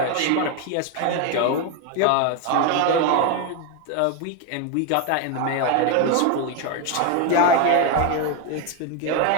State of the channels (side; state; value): both; different; correlation 0.02